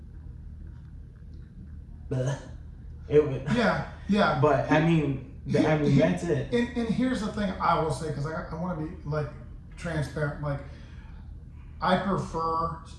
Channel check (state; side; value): identical; both; correlation 1.00